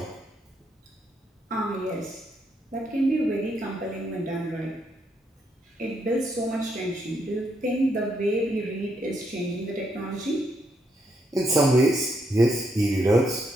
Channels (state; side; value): normal; both; correlation 0.77